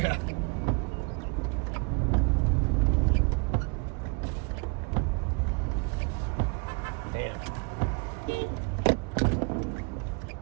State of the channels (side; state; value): left; quieter; 32.3 dB